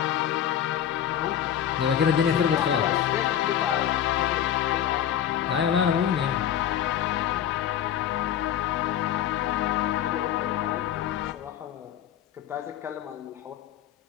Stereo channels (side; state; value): right; quieter; 10.1 dB